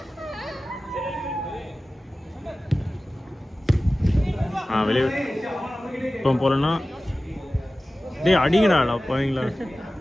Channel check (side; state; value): both; normal; correlation 0.96